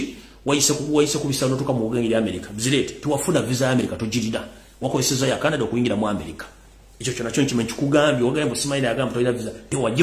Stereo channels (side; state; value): both; identical; correlation 1.00